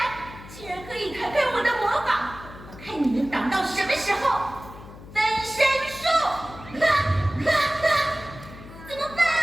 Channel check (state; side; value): noise; left; hum, 16 dB below the sound